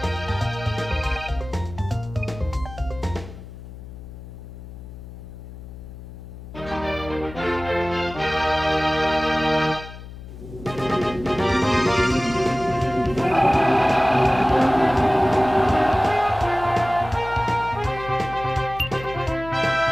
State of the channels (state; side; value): noise; left; hum, 14 dB below the sound